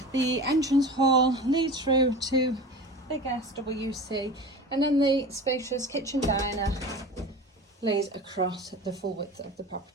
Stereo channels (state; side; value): normal; both; correlation 0.34